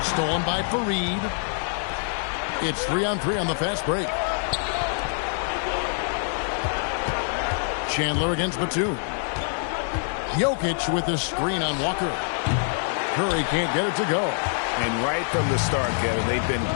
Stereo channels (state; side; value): silent; right; 62 dB below the other